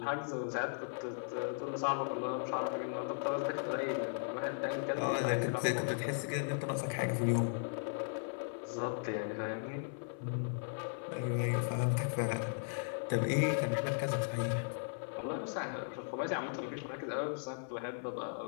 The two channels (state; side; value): silent; right; 53 dB below the other